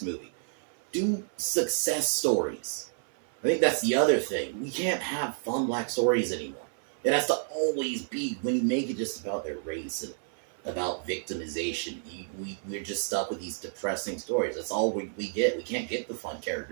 movie. Do success stories. I think that's the other thing. We can't have fun black stories anymore. It has to always be, when you make it just about their race and about victimization, we're just stuck with these depressing stories. That's all we get. We can't get the fun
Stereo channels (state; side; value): silent; left; 55 dB below the other